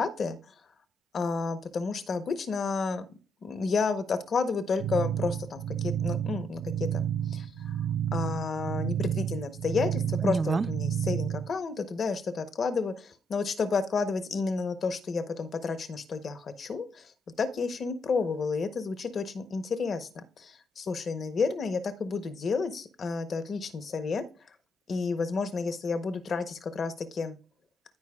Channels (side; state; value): both; normal; correlation 0.76